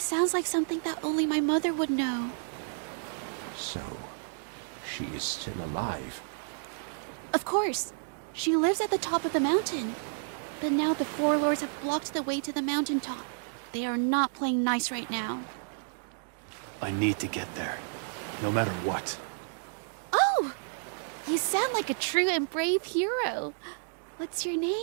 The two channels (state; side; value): silent; left; digital silence